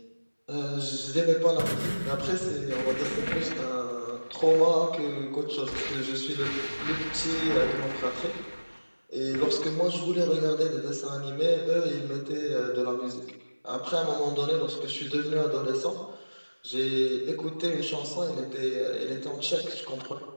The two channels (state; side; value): inverted; both; correlation -1.00